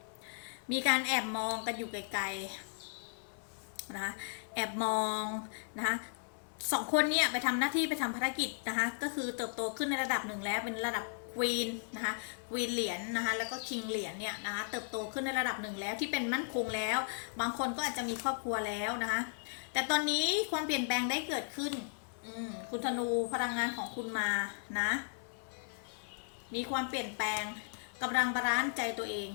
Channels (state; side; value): silent; right; digital silence